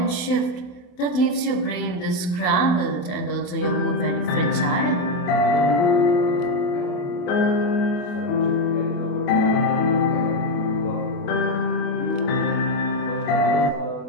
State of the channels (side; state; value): right; late; 28 ms